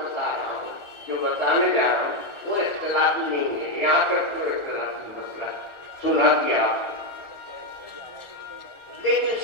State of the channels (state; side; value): late; right; 1.4 ms